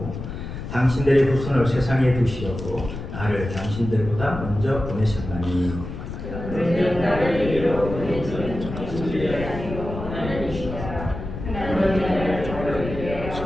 당신들의 후손을 세상에 두시려고 나를 당신들보다 먼저 보내셨나니 나를 이리로 보내신 당신들이 아니고 하나님이시라. 하나님이 나를 저에게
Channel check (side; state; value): left; noise; rumble, 8 dB below the sound